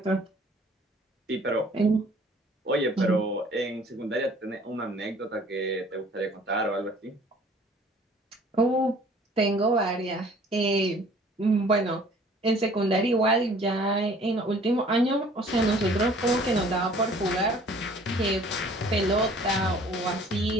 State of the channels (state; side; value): normal; both; correlation 0.53